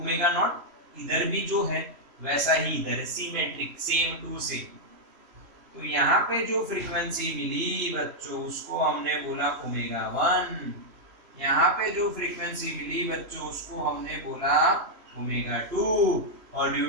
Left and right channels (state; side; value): late; left; 3.1 ms